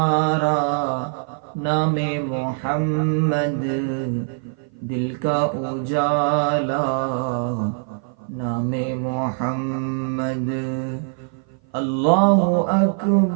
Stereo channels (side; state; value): left; silent; 56 dB below the other